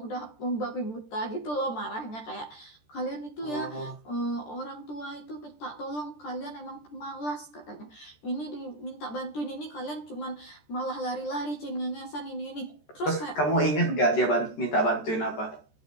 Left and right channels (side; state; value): right; late; 13 ms